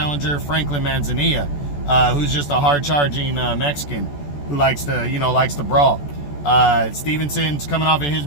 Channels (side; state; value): right; late; 14 ms